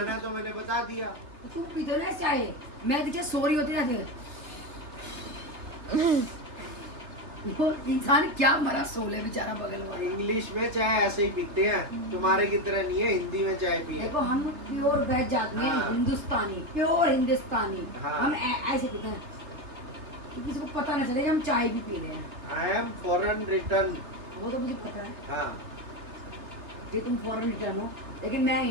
है, तो मैंने बता दिया। तो तू पीते ना चाय, मैं दिखे सो रही होती ना फिर। वो इंसान क्या मरा सोले बेचारा बगल वाला। इंग्लिश में चाय ऐसे ही पीते हैं, तुम्हारे की तरह नहीं है हिंदी में चाय पिए। देखो हम प्योर वेज आदमी हैं, हाँ। हिंदुस्तानी, प्योर हिंदुस्तानी। हाँ। हम ऐसे पीते हैं कि किसी को पता न चले कि हम चाय भी पी रहे हैं। I am foreign return. वो तो मुझे पता है हाँ कि तुम फॉरेन रिटर्न हो, लेकिन मैं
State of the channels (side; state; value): left; late; 3.5 ms